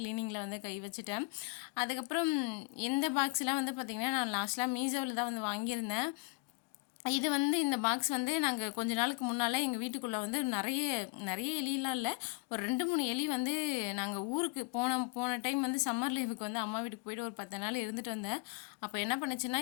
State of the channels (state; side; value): quieter; right; 30.8 dB